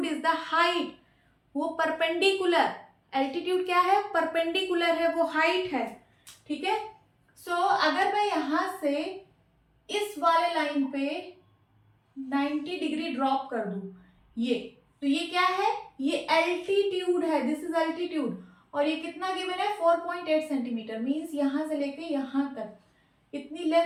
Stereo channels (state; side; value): identical; both; correlation 1.00